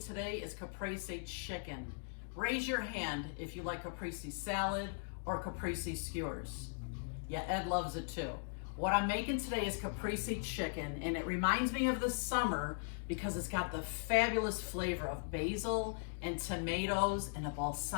is Caprese Chicken. Raise your hand if you like caprese salad or caprese skewers. Yeah, Ed loves it too. What I'm making today is caprese chicken, and it reminds me of the summer because it's got the fabulous flavor of basil and tomatoes and a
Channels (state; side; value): silent; right; digital silence